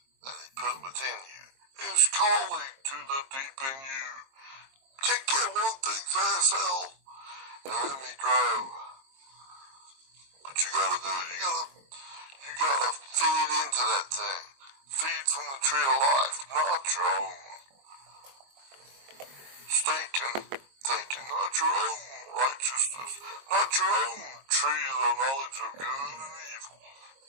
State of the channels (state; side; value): late; left; 22 ms